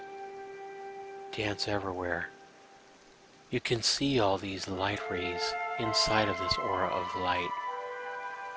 dance everywhere. You can see all these light rays inside of this aura of light,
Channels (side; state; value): both; identical; correlation 1.00